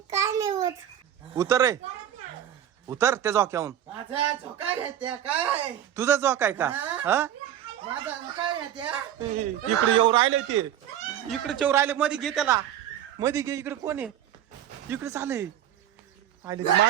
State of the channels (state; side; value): quieter; left; 10.7 dB